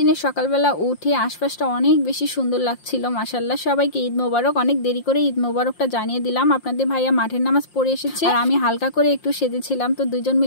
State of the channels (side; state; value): right; late; 5.7 ms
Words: সকালবেলা উঠে আশপাশটা অনেক বেশি সুন্দর লাগছিল। মাশাআল্লাহ, সবাইকে ঈদ মোবারক। অনেক দেরি করে ঈদ মোবারকটা জানিয়ে দিলাম। আপনাদের ভাইয়া মাঠের নামাজ পড়ে এসেছে, আর আমি হালকা করে একটু সেজেছিলাম। তো দুইজন